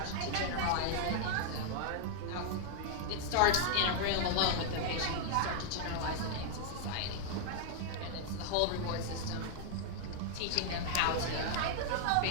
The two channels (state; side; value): different; both; correlation -0.01